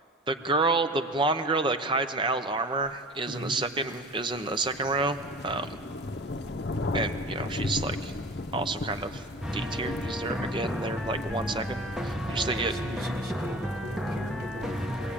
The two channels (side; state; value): both; normal; correlation 0.40